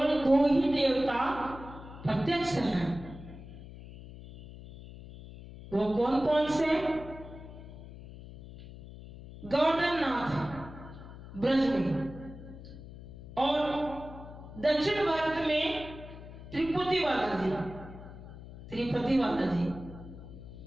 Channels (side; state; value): left; noise; hum, 15 dB below the sound